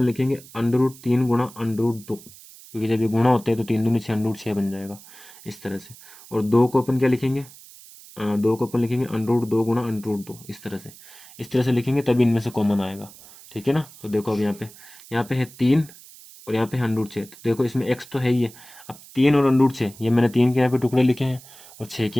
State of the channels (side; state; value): right; noise; hiss, 20 dB below the sound